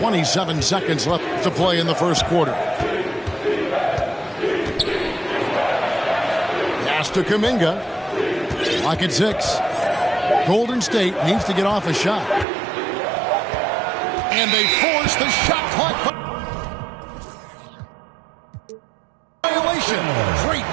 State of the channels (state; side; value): drops out; left; at 12.5 s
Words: seconds left to play in the first quarter. Pass to Kuminga. Lock at 6. Golden State needs to get off a shot. And they force the shot clock violation. Great